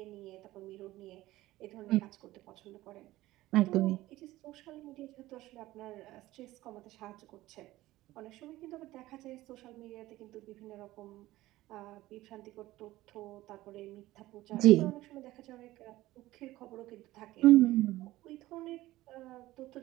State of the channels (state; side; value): quieter; left; 16.9 dB